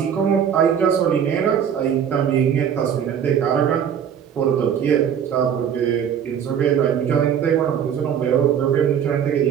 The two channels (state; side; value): quieter; left; 8.4 dB